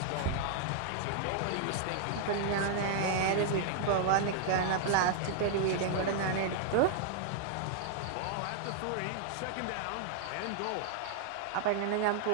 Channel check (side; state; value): both; different; correlation -0.01